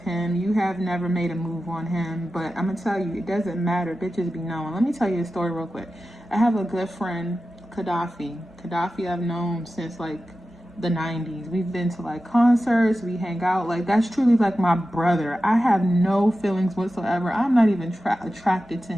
you have never made a move on him. But I'm gonna tell you, it doesn't matter. Bitches be knowing. Let me tell you a story real quick. I have a good friend, Gaddafi I've known since like the 90s. We've been to like concerts, we hang out. Like, that's truly like my brother. I have no feelings whatsoever. I'm not even attracted to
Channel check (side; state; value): both; normal; correlation 0.93